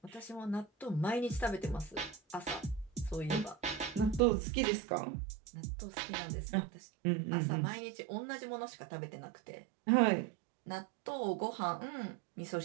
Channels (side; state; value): left; drops out; at 4.2 s